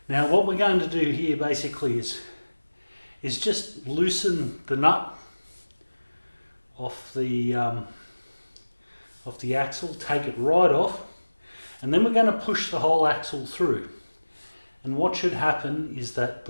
Now what we're going to do here basically is just loosen the nut off the axle, take it right off, and then we're going to push the whole axle through. And what should happen is that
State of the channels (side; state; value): both; inverted; correlation -1.00